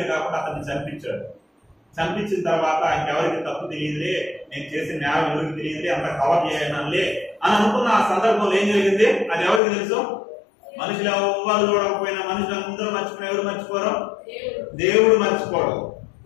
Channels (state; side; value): drops out; right; at 9.6 s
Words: కాకుండా అతన్ని చంపించాడు. చంపించిన తర్వాత ఇంకెవరికి తప్పు తెలియదులే, నేను చేసిన న్యాయం ఎవరికి తెలియదులే, అంత కవర్ చేయనంలే అని అనుకున్న ఆ సందర్భంలో ఏం జరిగింది? అది ఎవరికి తెలుసు? మనుషులు ఎవ్వరు చూడకపోయినా, మనుషులు అందరూ మర్చిపోయిన ఎవరు మర్చిపోరు? దేవుడు మర్చిపోడు.